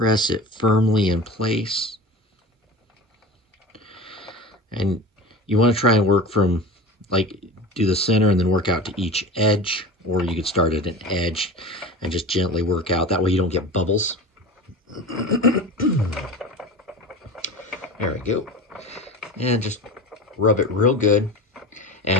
it firmly in place. And you want to try and work from, like, do the center and then work out to each edge. Or you could start at an edge and just gently work out. That way you don't get bubbles. There we go. And just rub it real good.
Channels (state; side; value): normal; both; correlation 0.32